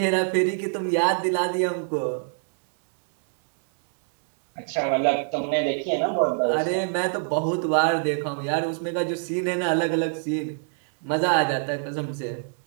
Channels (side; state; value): left; silent; digital silence